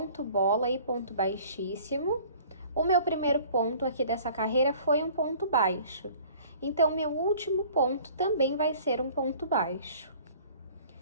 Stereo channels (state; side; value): inverted; both; correlation -0.50